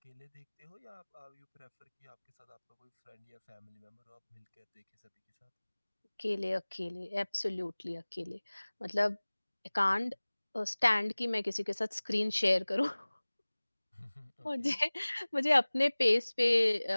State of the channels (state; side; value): inverted; both; correlation -1.00